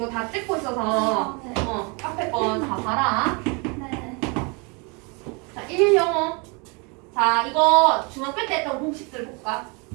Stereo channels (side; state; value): left; quieter; 31.4 dB